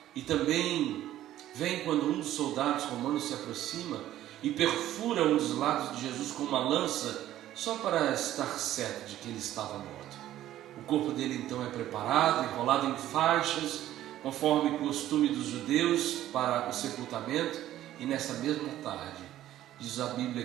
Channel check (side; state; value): left; quieter; 13.2 dB